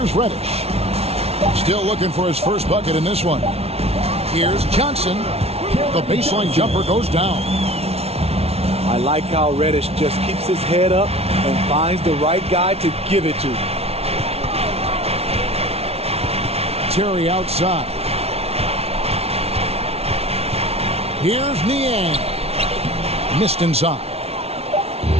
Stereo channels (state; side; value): late; left; 0.30 ms